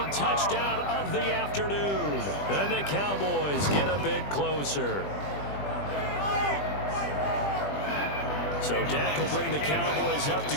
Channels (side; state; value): right; late; 20 ms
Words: touchdown of the afternoon. And the Cowboys get a bit closer. So Dak will bring the Cowboys up to